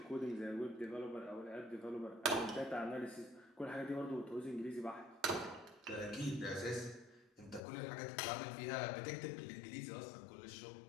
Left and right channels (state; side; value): drops out; right; at 7.6 s